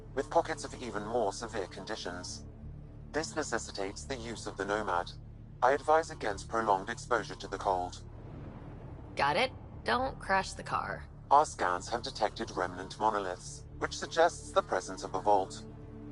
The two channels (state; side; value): identical; both; correlation 1.00